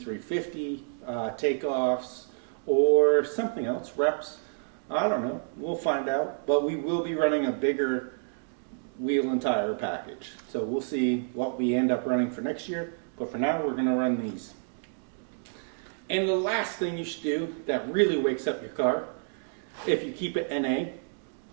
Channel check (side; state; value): left; silent; digital silence